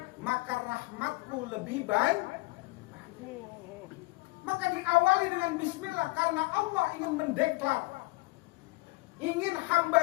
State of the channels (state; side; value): quieter; right; 22.9 dB